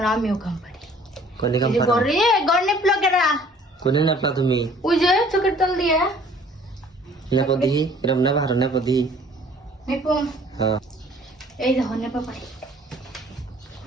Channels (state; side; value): normal; both; correlation 0.55